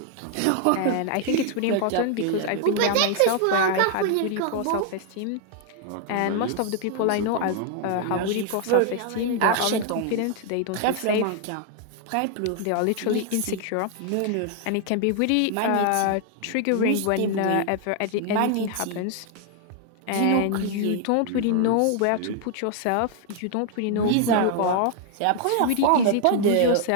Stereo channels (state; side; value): different; both; correlation 0.00